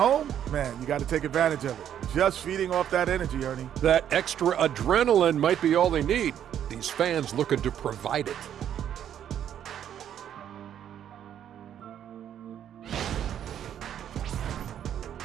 man, you got to take advantage of it. Just feeding off that energy, Ernie. That extra adrenaline might be all they need. These fans looking to provide it.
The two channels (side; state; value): left; quieter; 9.9 dB